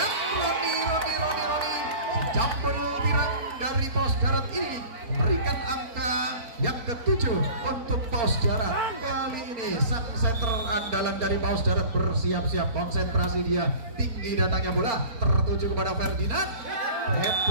Roni. Jambul tirang dari Paus Darat ini memberikan angka yang ke-7 untuk Paus Darat. Kali ini sang center andalan dari Paus Darat bersiap-siap, konsentrasi dia, tinggi datangnya bola, tertuju kepada Ferdinand.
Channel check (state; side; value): late; left; 4.3 ms